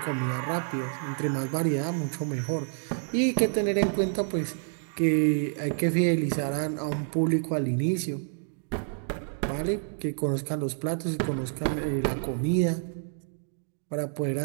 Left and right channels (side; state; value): left; silent; digital silence